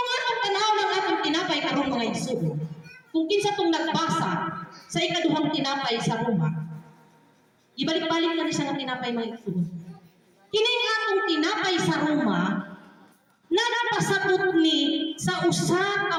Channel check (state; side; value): identical; both; correlation 1.00